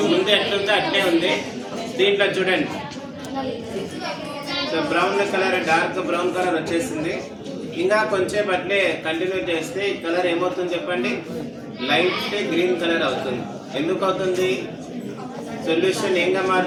ముందు ఎట్లుందో అట్లే ఉంది. దీంట్లో చూడండి, so brown colour, dark brown colour వచ్చేసింది. ఇంకా కొంచెం అట్లే కంటిన్యూ చేస్తే ఈ కలర్ ఏమవుతుంది చెప్పండి? లైట్ గ్రీన్ కలర్ అవుతుంది. ఎందుకు అవుతుంది? సొల్యూషన్ ఏంగా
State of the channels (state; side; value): identical; both; correlation 1.00